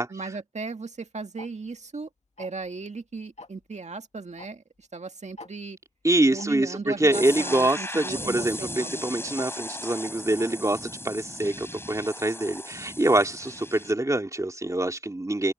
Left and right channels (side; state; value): both; normal; correlation 0.74